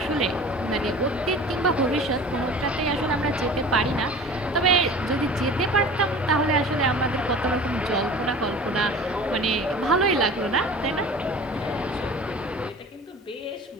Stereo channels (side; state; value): both; normal; correlation 0.41